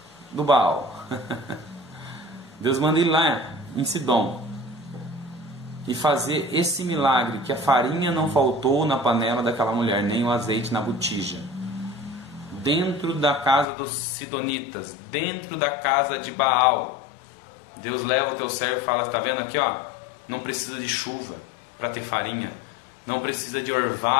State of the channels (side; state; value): right; drops out; at 13.7 s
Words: do Baal. Deus manda ele lá em Sidom e fazer esse milagre, que a farinha não faltou na panela daquela mulher, nem o azeite na botija. Dentro da casa dos sidonitas, dentro da casa de Baal, Deus leva o teu servo e fala: está vendo aqui, ó, não precisa de chuva para ter farinha, não precisa de